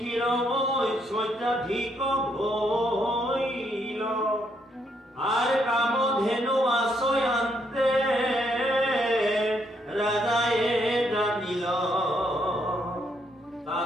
আর কামধেনু আশ্রয়ান্তে রাজায়ে জানিল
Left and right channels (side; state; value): both; normal; correlation 0.74